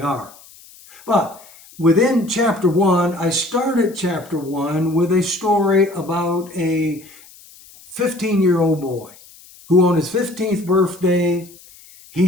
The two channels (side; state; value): left; noise; hiss, 23 dB below the sound